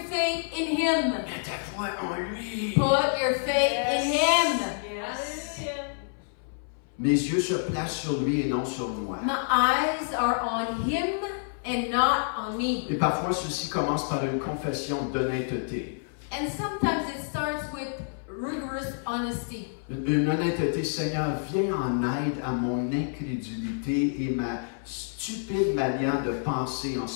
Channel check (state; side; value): silent; right; 59 dB below the other